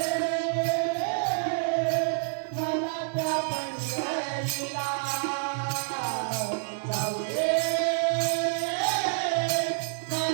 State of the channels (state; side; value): silent; left; digital silence